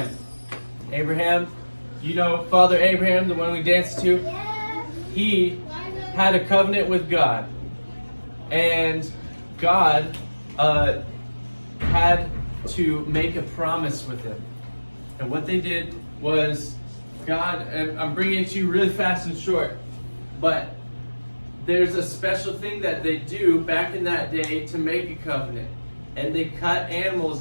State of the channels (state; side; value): inverted; both; correlation -1.00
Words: Abraham, you know Father Abraham, the one we danced to? He had a covenant with God. And God had to make a promise with him. And what they did was, God, and I'm bringing it to you really fast and short, but there's a special thing that they do back in that day to make a covenant. And they cut